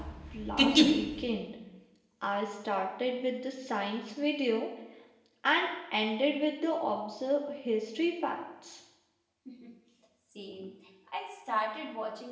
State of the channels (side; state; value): both; identical; correlation 1.00